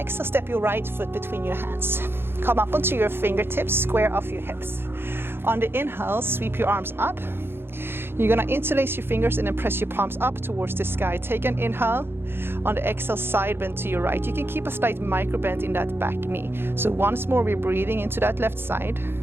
step your right foot between your hands. Come up onto your fingertips, square off your hips. On the inhale, sweep your arms up. You're gonna interlace your fingers and then press your palms up towards the sky. Take an inhale. On the exhale, side bend to your right. You can keep a slight micro bend in that back knee. So once more, we're breathing into that left side.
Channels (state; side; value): late; left; 0.11 ms